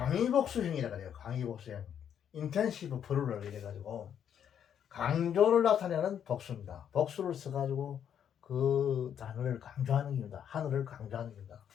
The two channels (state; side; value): quieter; right; 8.9 dB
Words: 해요. 강의복수형. 인텐시브 프루럴 이래가지고 강조를 나타내는 복수입니다. 복수를 써가지고 그 단어를 강조하는 겁니다. 하늘을 강조하는 겁니다.